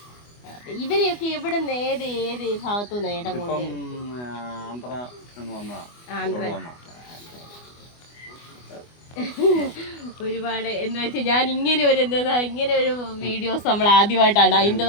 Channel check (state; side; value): late; right; 24 ms